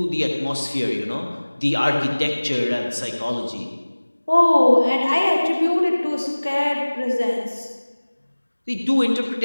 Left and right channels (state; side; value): inverted; both; correlation -1.00